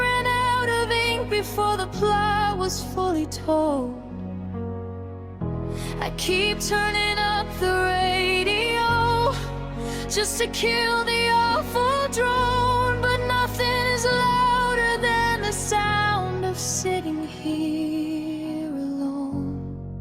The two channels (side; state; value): both; identical; correlation 1.00